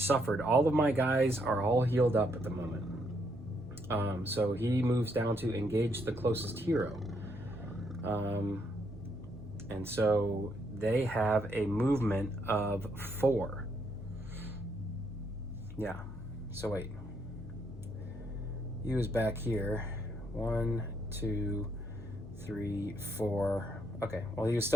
All of my guys are all healed up at the moment. So he moves down to engage the closest hero. And so they have a movement of 4. Yeah. So wait. He was back here. 1, 2, 3, 4. Okay. Well, he was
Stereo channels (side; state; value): both; normal; correlation 0.74